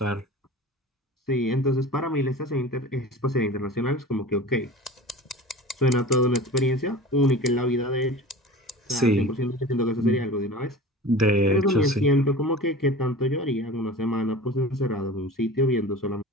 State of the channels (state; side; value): normal; both; correlation 0.37